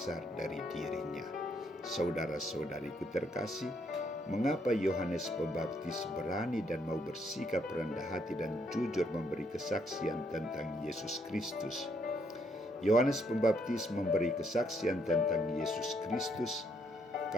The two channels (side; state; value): both; normal; correlation 0.72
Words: dari dirinya. Saudara-saudariku terkasih, mengapa Yohanes Pembaptis berani dan mau bersikap rendah hati dan jujur memberi kesaksian tentang Yesus Kristus? Yohanes Pembaptis memberi kesaksian tentang Yesus Kristus